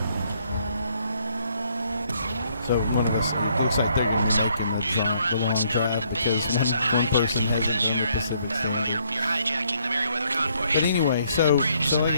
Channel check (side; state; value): both; inverted; correlation -0.69